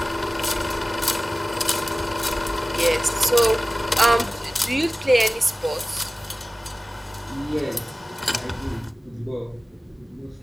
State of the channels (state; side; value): normal; both; correlation 0.97